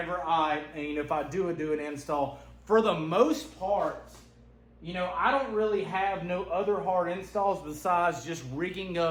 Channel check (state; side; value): identical; both; correlation 1.00